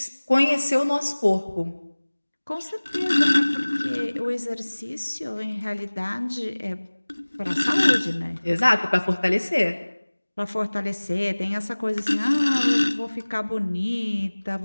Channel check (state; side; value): inverted; both; correlation -1.00